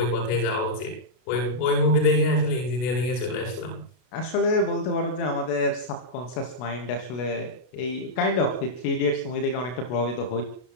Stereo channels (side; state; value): right; late; 32 ms